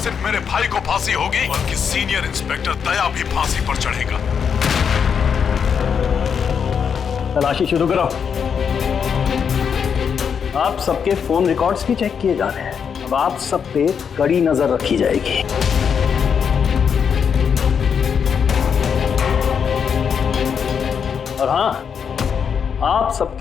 सिर्फ मेरे भाई को फांसी होगी बल्कि सीनियर इंस्पेक्टर दया भी फांसी पर चढ़ेगा। तलाशी शुरू करो। आप सबके फोन रिकॉर्ड्स भी चेक किए जा रहे हैं। अब आप सब पे कड़ी नजर रखी जाएगी। और हाँ, आप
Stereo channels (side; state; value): right; quieter; 7.0 dB